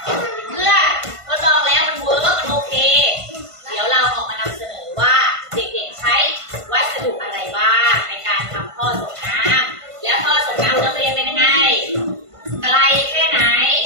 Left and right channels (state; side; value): late; left; 1.5 ms